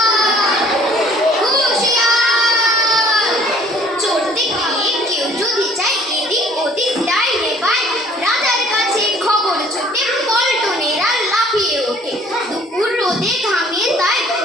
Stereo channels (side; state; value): both; normal; correlation 0.56